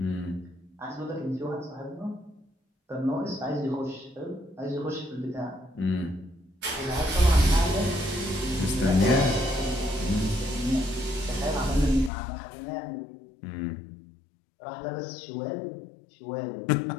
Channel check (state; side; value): drops out; right; at 12.1 s